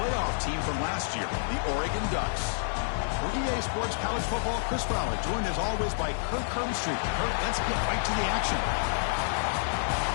team from last year, the Oregon Ducks. For EA Sports College Football, Chris Fowler, joined as always by Kirk Herbstreit. Kirk, let's get right to the action.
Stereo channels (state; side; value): silent; right; 59 dB below the other